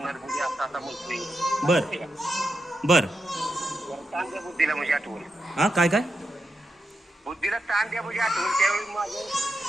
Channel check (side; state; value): both; normal; correlation 0.87